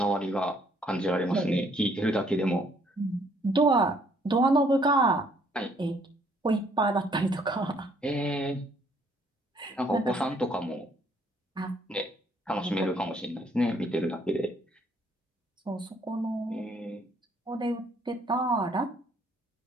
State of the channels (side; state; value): both; normal; correlation 0.65